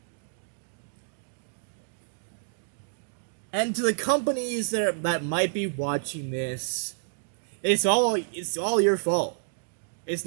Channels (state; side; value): silent; left; digital silence